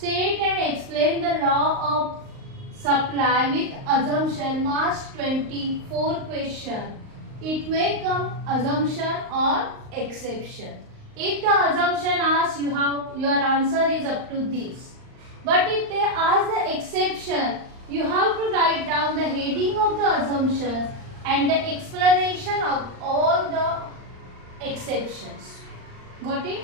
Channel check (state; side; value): late; left; 38 ms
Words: and explain the law of supply with assumption. March 24 question. It may come assumption or exception. If the assumption asks, your answer is up to this. But if they ask the exception, you have to write down the heading of the assumptions and the explanation of all the exceptions. Got it?